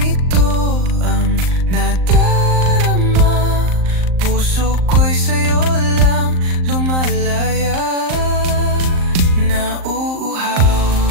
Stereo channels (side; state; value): left; late; 38 ms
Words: ang nadarama? Puso ko'y sa'yo lang lumalaya. Nauuhaw